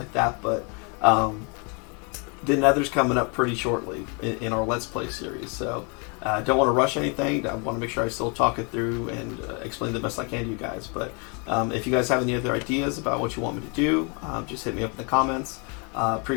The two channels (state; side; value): quieter; right; 34.3 dB